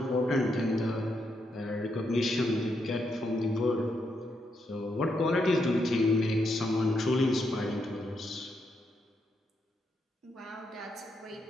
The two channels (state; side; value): normal; both; correlation 0.80